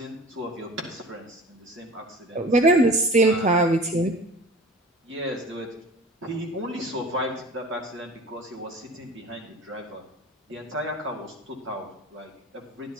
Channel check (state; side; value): normal; both; correlation 0.40